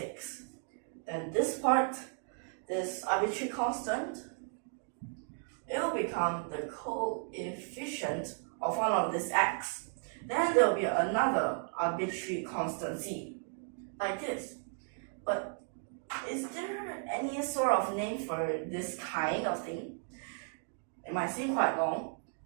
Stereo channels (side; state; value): left; silent; 55 dB below the other